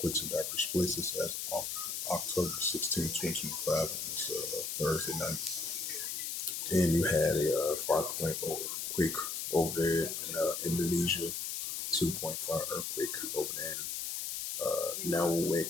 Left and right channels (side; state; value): left; noise; hiss, 3 dB below the sound